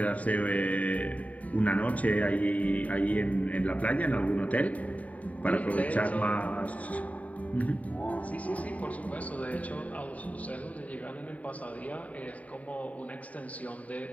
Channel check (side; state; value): right; late; 0.069 ms